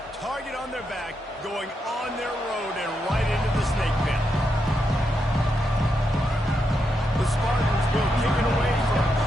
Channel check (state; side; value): normal; both; correlation 0.83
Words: target on their back, going on their road and right into the snake pit. The Spartans will kick it away